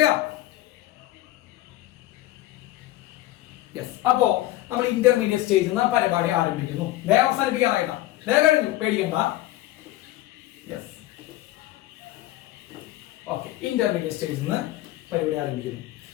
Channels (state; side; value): quieter; right; 16.0 dB